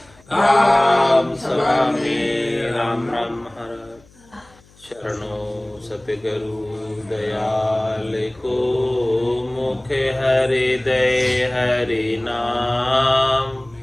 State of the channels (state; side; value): noise; left; hum, 28 dB below the sound